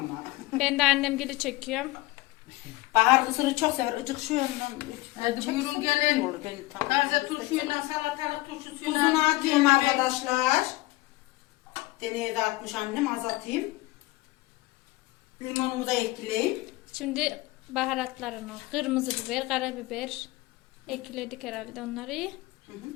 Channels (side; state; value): right; quieter; 20.2 dB